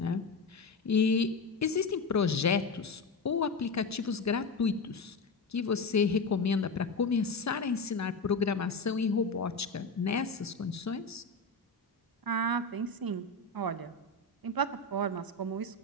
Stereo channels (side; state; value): right; quieter; 3.6 dB